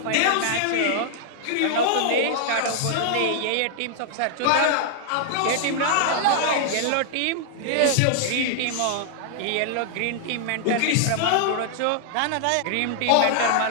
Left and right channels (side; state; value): both; different; correlation -0.01